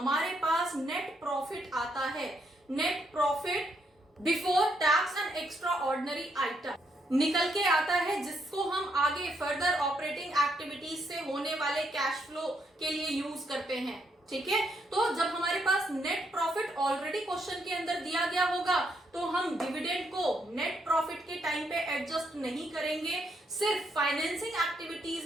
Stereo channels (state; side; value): normal; both; correlation 0.76